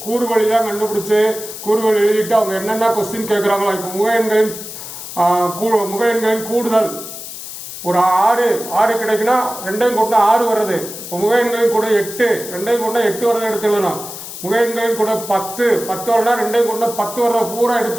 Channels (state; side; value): noise; left; hiss, 11 dB below the sound